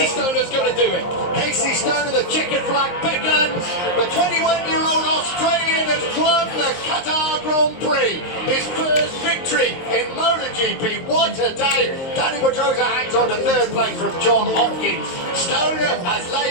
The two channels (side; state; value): right; late; 23 ms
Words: Stoner's going to do it. Casey Stoner, the checkered flag beckons. The 21-year-old Australian has won the Qatar Grand Prix. His first victory in MotoGP. What a day. Danny Pedrosa hangs on to 3rd place from John Hopkins. Stoner has